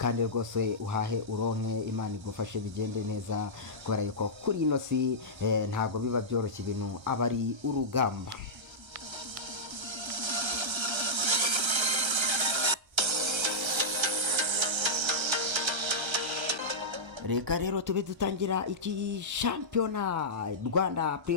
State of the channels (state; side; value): late; left; 1.3 ms